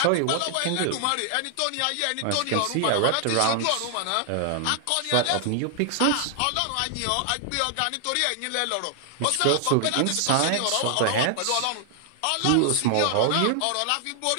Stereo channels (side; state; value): both; different; correlation 0.00